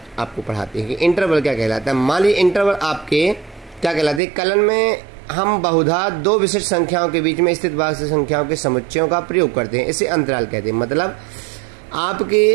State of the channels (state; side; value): drops out; left; at 4.2 s